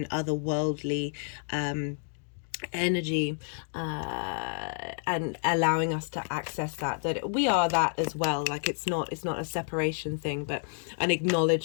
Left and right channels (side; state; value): right; silent; 58 dB below the other